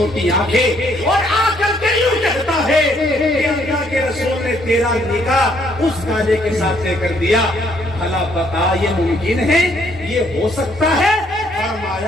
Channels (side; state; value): both; normal; correlation 0.68